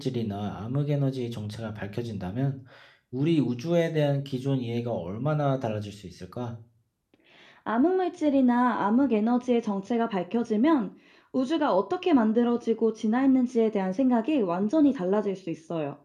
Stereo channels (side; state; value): both; identical; correlation 1.00